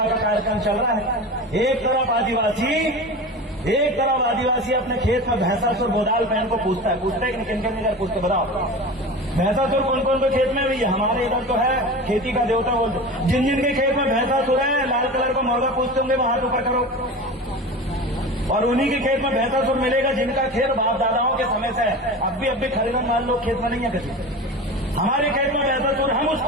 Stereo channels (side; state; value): both; normal; correlation 0.31